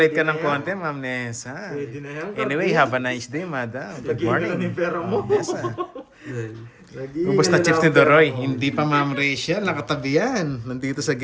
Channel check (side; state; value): both; identical; correlation 1.00